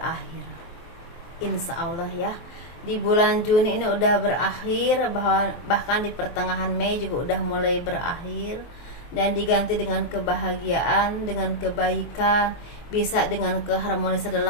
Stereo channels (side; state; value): right; late; 23 ms